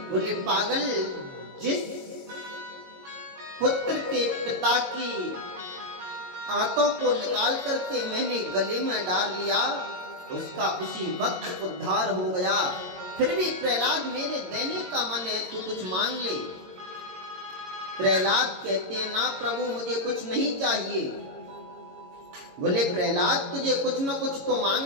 बोले पागल, जिस पुत्र के पिता की आंतों को निकाल करके मैंने गले में डाल लिया, उसका उसी वक्त उद्धार हो गया। फिर भी प्रहलाद मेरे देने का मन है, तू कुछ मांग ले। प्रहलाद कहते हैं, ना प्रभु, मुझे कुछ नहीं चाहिए। बोले प्रहलाद, तुझे कुछ न कुछ तो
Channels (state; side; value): late; left; 22 ms